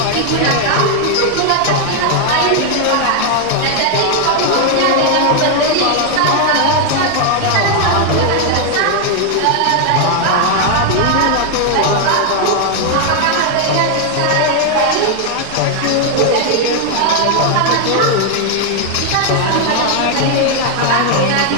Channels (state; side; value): different; both; correlation 0.01